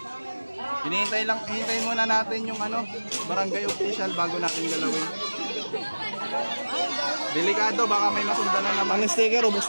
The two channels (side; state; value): both; inverted; correlation -1.00